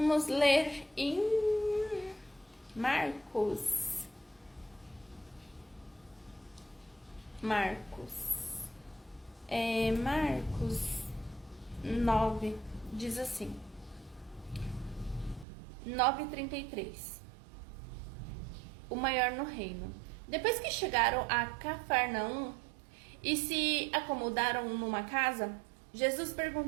ler em Marcos. Marcos 9, diz assim, 9:33. O maior no reino. Depois que chegaram a Cafarnaum e se acomodaram numa casa, Jesus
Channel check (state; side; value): drops out; left; at 15.5 s